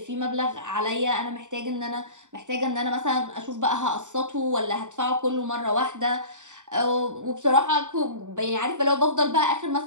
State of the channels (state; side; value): late; left; 0.85 ms